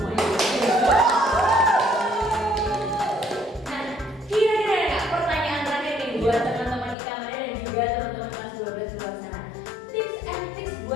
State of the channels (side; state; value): right; drops out; at 7.0 s